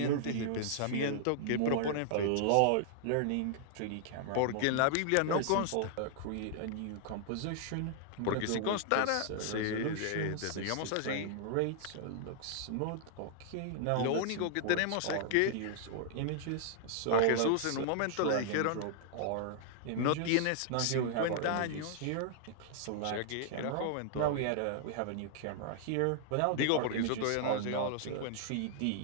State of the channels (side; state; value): both; different; correlation -0.01